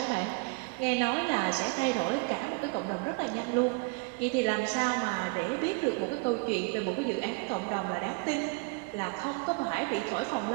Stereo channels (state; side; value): quieter; left; 31.7 dB